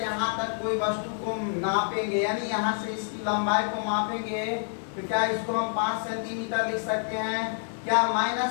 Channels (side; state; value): right; silent; 60 dB below the other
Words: यहाँ तक कोई वस्तु को नापेंगे, यानी यहाँ से इसकी लंबाई को मापेंगे, तो क्या इसको हम 5 सेंटीमीटर लिख सकते हैं? क्या